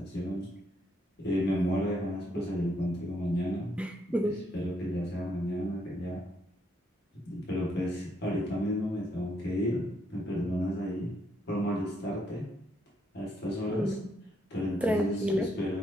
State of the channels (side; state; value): both; normal; correlation 0.74